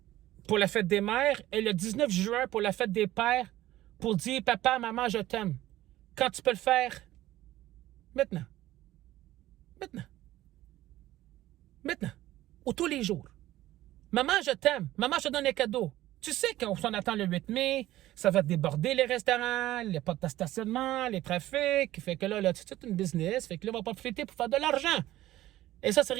pour la fête des mères et le 19 juin pour la fête des pères pour dire « Papa, maman, je t'aime » quand tu peux le faire maintenant? Maintenant. Ou tous les jours. Maman, je t'aime. Maman, je te donne un cadeau. Tu sais qu'on s'en attend le 8 mai, ça va déborder les restaurants, les portes de stationnement, les trafics. Fait que là, c'est une business. Fait que là, on va profiter pour faire de l'argent. Et ça, c'est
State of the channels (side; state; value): left; quieter; 15.2 dB